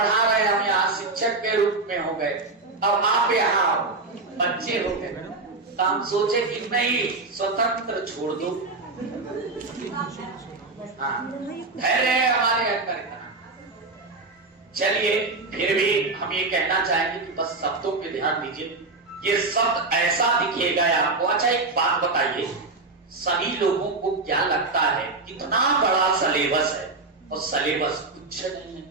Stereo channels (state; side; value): quieter; left; 3.6 dB